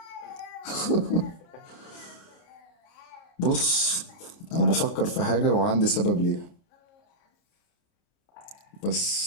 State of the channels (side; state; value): right; late; 29 ms